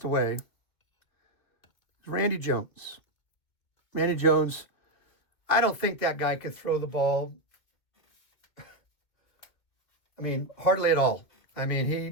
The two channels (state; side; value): late; right; 2.3 ms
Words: away. It's Randy Jones. Randy Jones, I don't think that guy could throw the ball. I mean, hardly at all. I